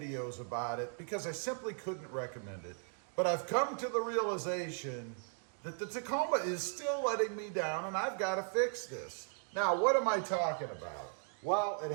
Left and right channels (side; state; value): left; silent; 53 dB below the other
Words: about it because I simply couldn't recommend it. But I've come to the realization that the Tacoma is still letting me down, and I've got to fix this. Now, what am I talking about? Well, it